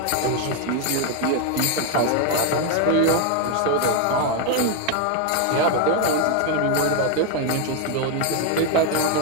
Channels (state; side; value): different; both; correlation 0.01